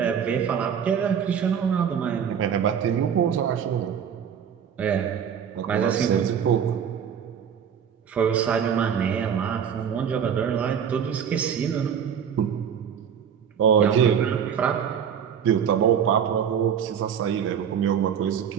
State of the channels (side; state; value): left; quieter; 8.0 dB